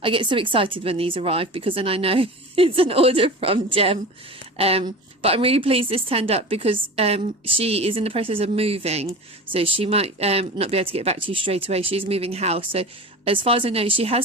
I get so excited when these arrive because then I know it's an order from Jem. But I'm really pleased this turned up because she is in the process of moving, so she might not be able to get back to you straight away. She's moving house, so as far as I know, she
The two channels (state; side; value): normal; both; correlation 0.32